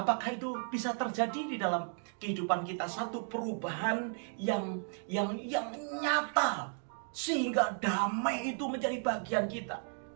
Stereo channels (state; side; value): silent; left; 55 dB below the other